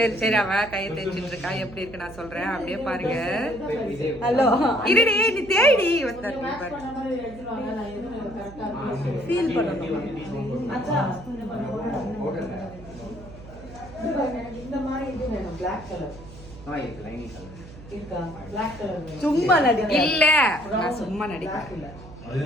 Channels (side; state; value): right; noise; hum, 17 dB below the sound